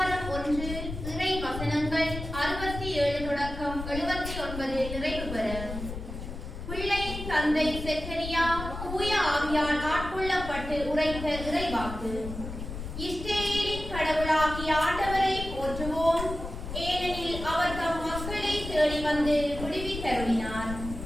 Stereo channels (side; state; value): left; noise; rumble, 8 dB below the sound